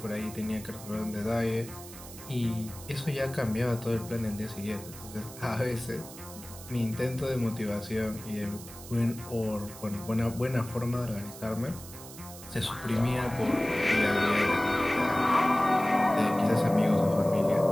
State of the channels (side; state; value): right; noise; hiss, 15 dB below the sound